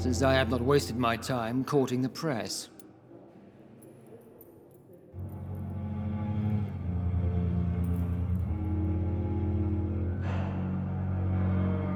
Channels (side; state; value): both; identical; correlation 1.00